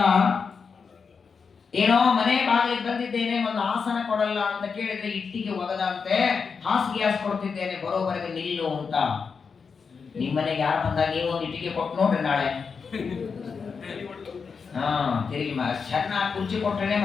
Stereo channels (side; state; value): right; quieter; 5.6 dB